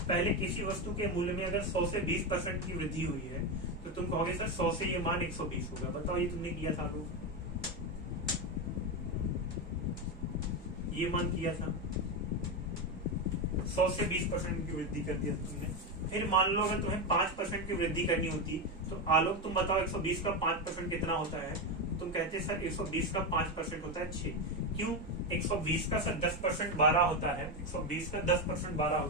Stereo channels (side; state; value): both; normal; correlation 0.12